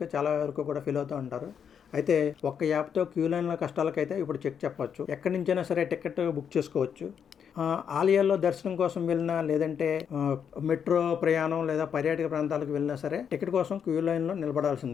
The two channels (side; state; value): right; quieter; 7.7 dB